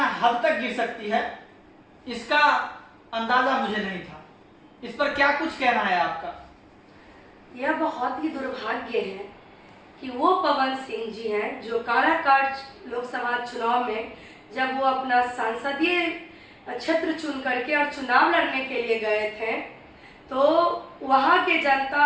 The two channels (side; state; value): both; identical; correlation 1.00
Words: हद तक गिर सकती है, इसका अंदाजा मुझे नहीं था। इस पर क्या कुछ कहना है आपका? यह बहुत ही दुर्भाग्य है कि वो पवन सिंह जी हैं जो काराकाट लोकसभा चुनाव में जब वो अपना संसदीय क्षेत्र चुन करके और चुनाव लड़ने के लिए गए थे तो वहाँ के